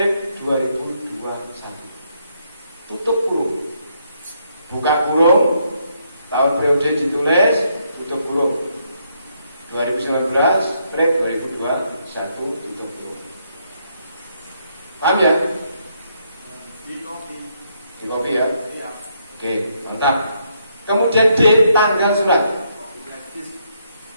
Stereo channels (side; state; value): both; inverted; correlation -0.75